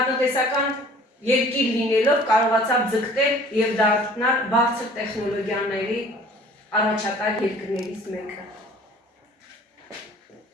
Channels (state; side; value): normal; both; correlation 0.50